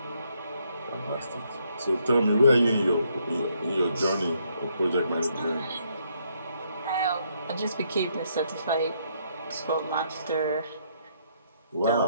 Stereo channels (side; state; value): both; inverted; correlation -0.72